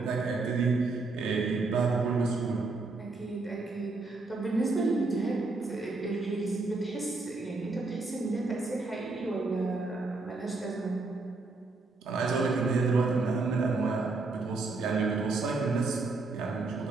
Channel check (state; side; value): quieter; left; 3.6 dB